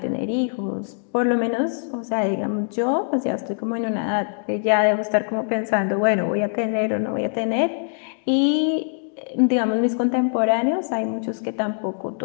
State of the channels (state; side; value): silent; right; digital silence